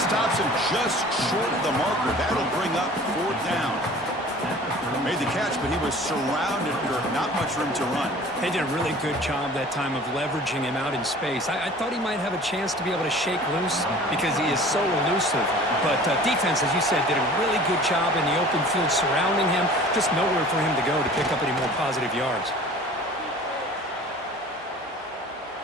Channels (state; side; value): normal; both; correlation 0.45